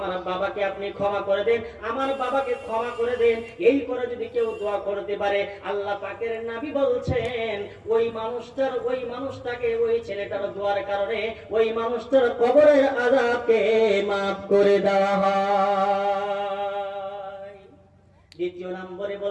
বাবাকে আপনি ক্ষমা করে দেন, আমার বাবাকে ক্ষমা করে দেন। এই করে যদি কেউ দোয়া করতে পারে, আল্লাহ পাকের নবী বলছেন ওই মানুষটাকে ওই ছেলেটার দোয়ার কারণে ওই মানুষটার কবরের আযাবকে maaf করে দেওয়া হয়। দ্বিতীয় নম্বরে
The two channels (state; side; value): identical; both; correlation 1.00